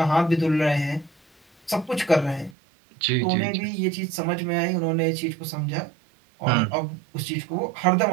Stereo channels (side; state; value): left; drops out; at 2.6 s